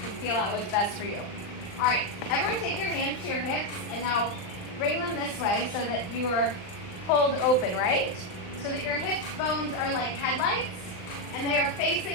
feel out what's best for you. All right, everyone take your hands to your hips and now bring them this way so that you are pulled open, right? So that your hips bones are like headlights and they are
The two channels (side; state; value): right; late; 39 ms